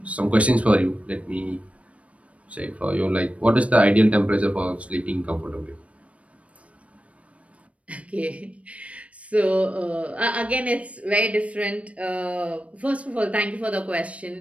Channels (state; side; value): late; left; 0.064 ms